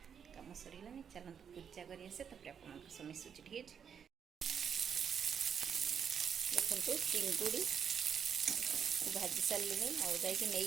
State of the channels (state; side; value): quieter; left; 7.5 dB